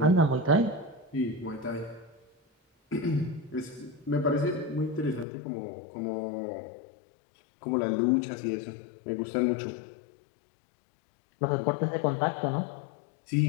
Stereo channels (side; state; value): right; drops out; at 5.2 s